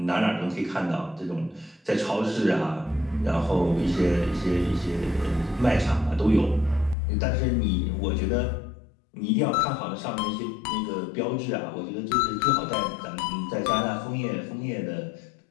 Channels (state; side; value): drops out; right; at 7.0 s